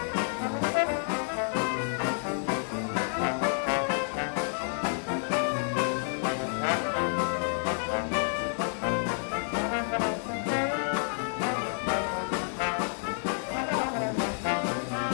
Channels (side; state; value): right; silent; 58 dB below the other